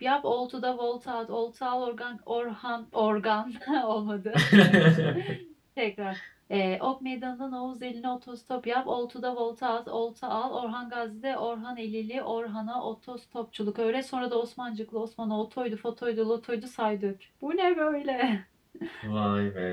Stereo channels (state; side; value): identical; both; correlation 1.00